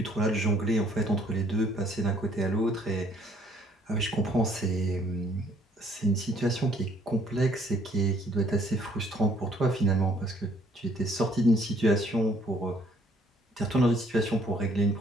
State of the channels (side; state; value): both; normal; correlation 0.62